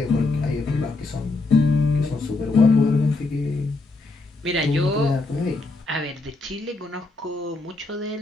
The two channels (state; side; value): quieter; right; 3.4 dB